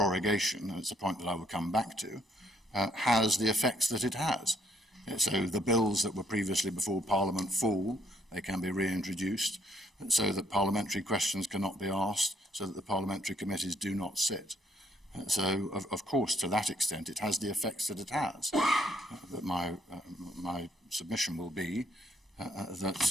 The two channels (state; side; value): normal; both; correlation 0.69